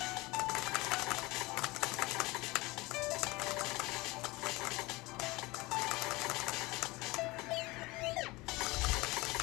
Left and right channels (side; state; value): right; quieter; 22.3 dB